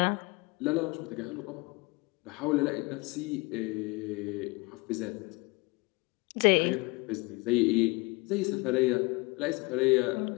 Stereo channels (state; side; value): quieter; right; 26.2 dB